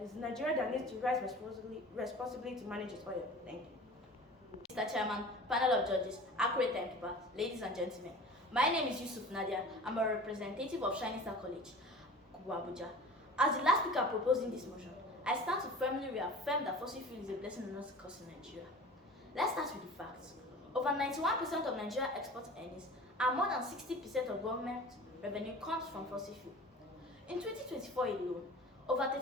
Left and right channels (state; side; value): normal; both; correlation 0.40